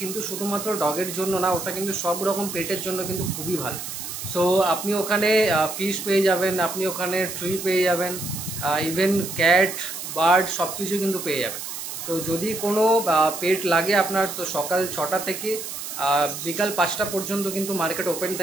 কিন্তু শুধুমাত্র ডগের জন্য না, ওটা কিন্তু সব রকম পেটের জন্য কিন্তু খুবই ভালো। সো আপনি ওখানে ফিশ পেয়ে যাবেন, আপনি ওখানে ট্রি পেয়ে যাবেন, ইভেন ক্যাট, বার্ড সব কিছু কিন্তু পেয়ে যাবেন। তো যদি কোনো পেট লাগে আপনার, তো সকাল 6টা থেকে বিকাল 5টা পর্যন্ত কিন্তু মার্কেট ওপেন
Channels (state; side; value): noise; right; hiss, 7 dB below the sound